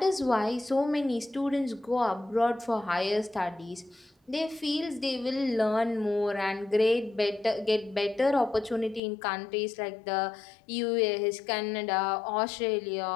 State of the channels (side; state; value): right; drops out; at 9.0 s